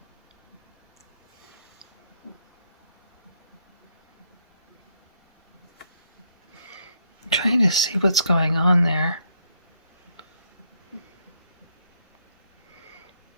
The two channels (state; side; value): inverted; both; correlation -0.73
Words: I'm trying to see what's going on there.